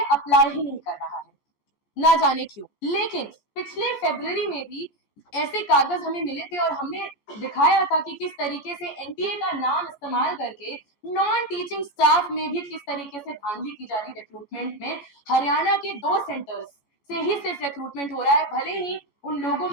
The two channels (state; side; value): late; right; 14 ms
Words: अप्लाई ही नहीं कर रहा है, ना जाने क्यों। लेकिन पिछले फरवरी में भी ऐसे कागज हमें मिले थे और हमने दिखाया था कि किस तरीके से एनटीए का नाम इस्तेमाल करके नॉन टीचिंग स्टाफ में भी किस तरीके से धांधली की जा रही रिक्रूटमेंट में। हरियाणा के 2 सेंटर्स से ही सिर्फ रिक्रूटमेंट हो रहा है, भले ही उन लोगों